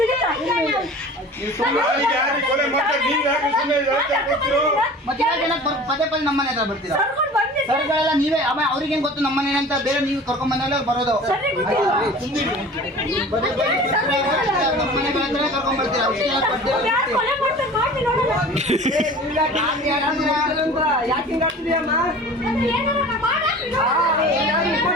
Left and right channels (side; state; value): both; normal; correlation 0.41